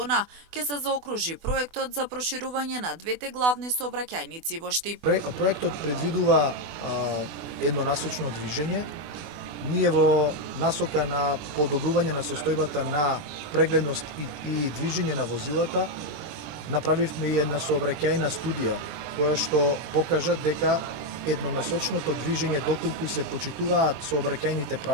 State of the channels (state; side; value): late; left; 24 ms